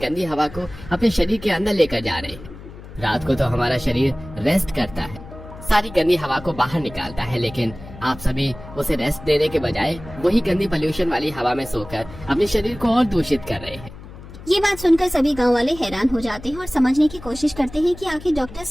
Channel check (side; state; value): left; noise; hum, 16 dB below the sound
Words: हवा को अपने शरीर के अंदर लेकर जा रहे हैं। रात को तो हमारा शरीर रेस्ट करता है, सारी गंदी हवा को बाहर निकालता है, लेकिन आप सभी उसे रेस्ट देने के बजाय वही गंदी पोल्यूशन वाली हवा में सोकर अपने शरीर को और दूषित कर रहे हैं। ये बात सुनकर सभी गांव वाले हैरान हो जाते हैं और समझने की कोशिश करते हैं कि आखिर डॉक्टर